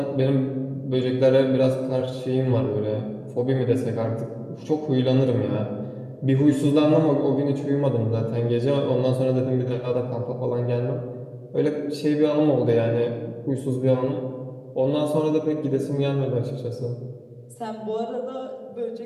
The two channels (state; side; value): identical; both; correlation 1.00